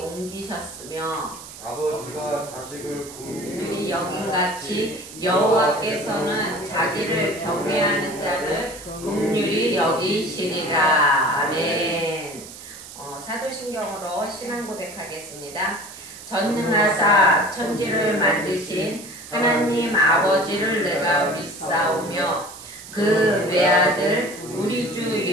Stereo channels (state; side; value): noise; right; hiss, 15 dB below the sound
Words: 아버지가 자식을 긍휼히 여긴같이 여호와께서는 자기를 경외하는 자를 긍휼히 여기시리라. 아멘. 사도신경으로 신앙 고백하겠습니다. 전능하사 천지를 만드신 하나님 아버지를 내가 믿사오며 그 외아들 우리 주